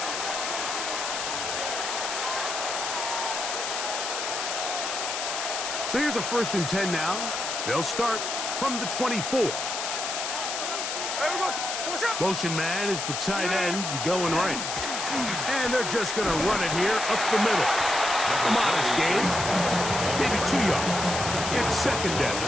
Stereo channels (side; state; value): left; noise; hiss, 3 dB below the sound